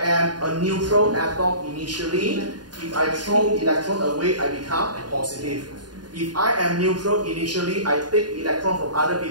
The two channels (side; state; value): left; late; 0.70 ms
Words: am a neutral atom initially. If I throw electron away, I become positive. If I am neutral initially, I take electron from other